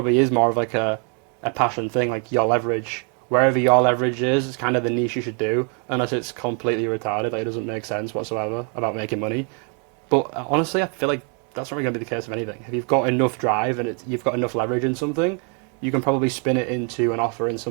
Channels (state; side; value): quieter; left; 38.6 dB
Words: is more of like a passion thing, like your leverage. Wherever your leverage is, it's kind of the niche you should do, unless it's completely retarded, like it doesn't make sense whatsoever about making money. But honestly, I feel like that's not really going to be the case of anything. If you've got enough drive and you've got enough leverage in something, you can probably spin it into an offer in